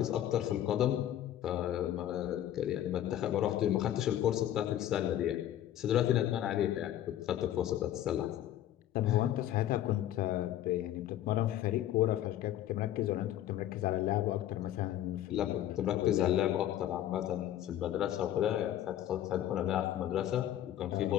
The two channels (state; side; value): quieter; right; 12.2 dB